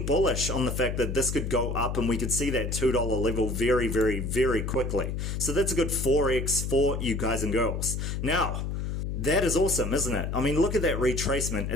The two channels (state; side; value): noise; left; hum, 3 dB below the sound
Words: bullish on the fact that this could go up and we could see that $2 level very, very, very quickly. So that's a good 4x for you guys and girls. Now, that is awesome, isn't it? I mean, look at that retracement.